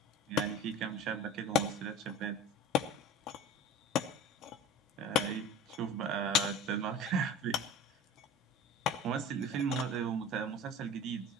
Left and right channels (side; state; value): both; normal; correlation 0.37